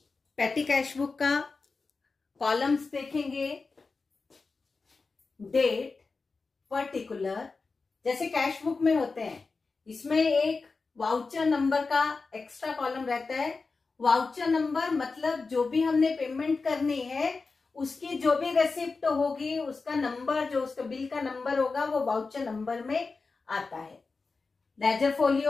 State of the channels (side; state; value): right; quieter; 4.2 dB